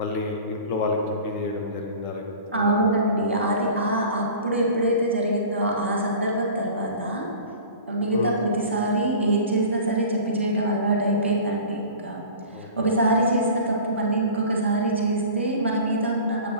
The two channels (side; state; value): both; inverted; correlation -0.40